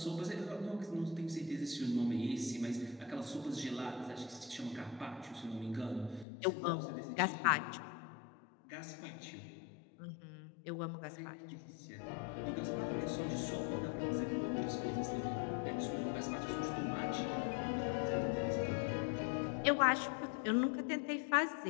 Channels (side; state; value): right; drops out; at 6.2 s